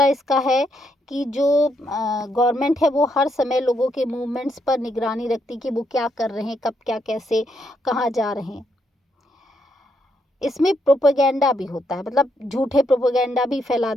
इसका है कि जो गवर्नमेंट है वो हर समय लोगों के मूवमेंट्स पर निगरानी रखती कि वो क्या कर रहे हैं, कब क्या कैसे कहाँ जा रहे हैं। इसमें प्रोपेगेंडा भी होता है, मतलब झूठे प्रोपेगेंडा भी फैला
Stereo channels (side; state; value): both; normal; correlation 0.77